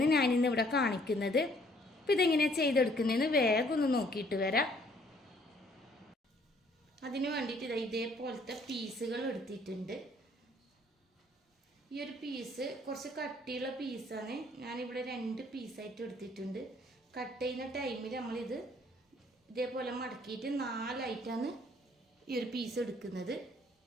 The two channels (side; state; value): both; normal; correlation 0.62